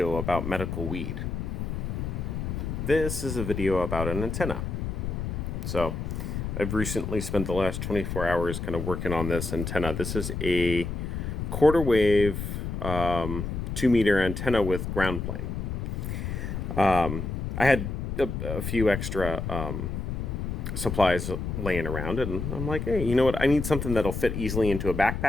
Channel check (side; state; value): left; noise; rumble, 4 dB below the sound